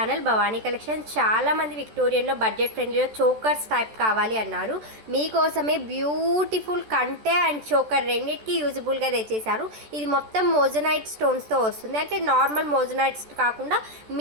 Bhavani collection. చాలామంది విక్టోరియన్లో బడ్జెట్ ఫ్రెండ్లీలో చోకర్స్ టైప్ కావాలి అన్నారు. మీకోసమే బ్యూటిఫుల్ కంటే అండ్ చోకర్ రెండింటికి యూజబుల్గా తెచ్చేసారు. ఇది మొత్తం మోజనైట్ స్టోన్స్తో వస్తుంది. అంటే నార్మల్ మోజనైట్స్ కాకుండా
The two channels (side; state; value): left; late; 14 ms